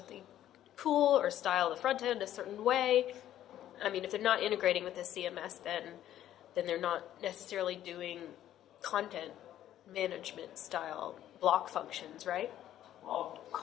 cool or style the front end a certain way? I mean, if they're not integrating with the CMS, then they're not necessarily doing content management style block functions, right? Well,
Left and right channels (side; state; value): right; quieter; 12.0 dB